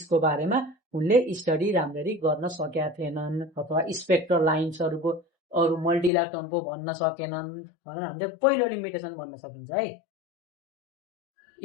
बारेमा उनले स्टडी राम्ररी गर्न सकेका थिएनन् अथवा स्पेक्ट्रल लाइन्सहरूको अरू मल्टी इलेक्ट्रोनको भन्न सकेनन् भनेर हामीले पहिलो लिमिटेसन भन्न सकिन्छ है।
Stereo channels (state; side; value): drops out; right; at 6.1 s